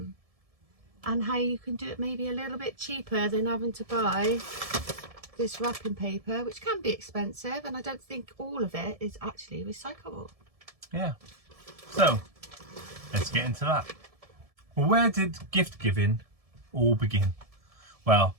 And how you can do it maybe a little bit cheaper than having to buy this wrapping paper, which can be expensive, and I don't think all of it is actually recyclable. Yeah, so let's get into that. Well, where did gift giving all begin? Well,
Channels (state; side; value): late; left; 1.7 ms